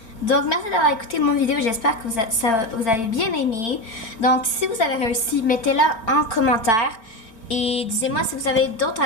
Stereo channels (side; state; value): right; late; 4.4 ms